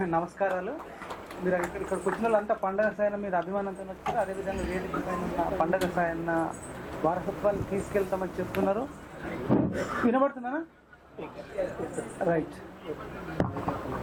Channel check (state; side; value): identical; both; correlation 1.00